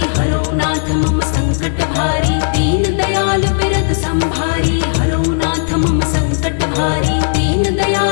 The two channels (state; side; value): silent; right; digital silence